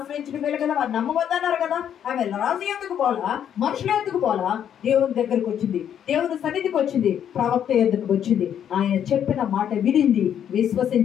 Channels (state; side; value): quieter; right; 9.3 dB